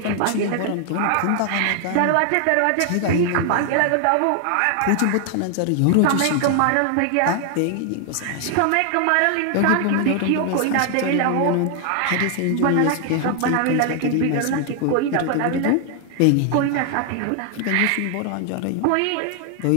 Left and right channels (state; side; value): different; both; correlation 0.00